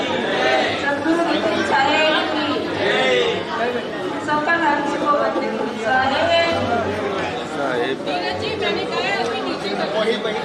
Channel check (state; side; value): identical; both; correlation 1.00